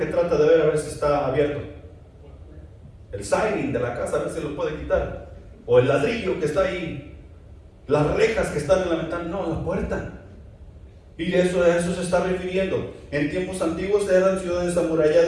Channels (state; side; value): identical; both; correlation 1.00